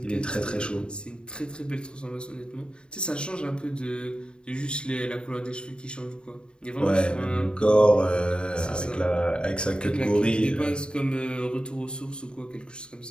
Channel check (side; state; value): right; late; 0.051 ms